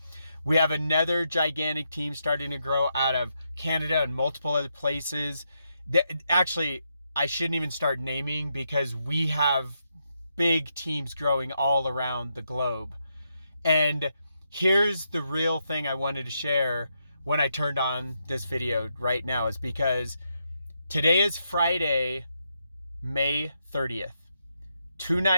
We have another gigantic team starting to grow out of Canada and multiple other places. Actually, I shouldn't even start naming because we have big teams growing all around the globe. And here's the real thing I wanted to share when I turned on this video right now is because today is Friday, May 30th.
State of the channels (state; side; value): inverted; both; correlation -0.81